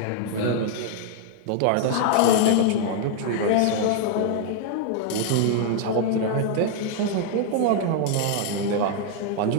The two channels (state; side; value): different; both; correlation 0.00